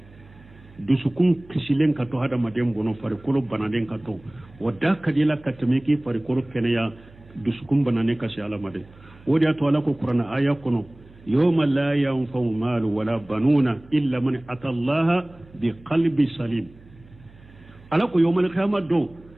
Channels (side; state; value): right; noise; hum, 24 dB below the sound